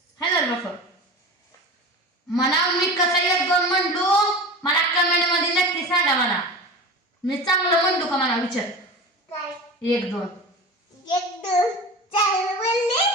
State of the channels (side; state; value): both; normal; correlation 0.32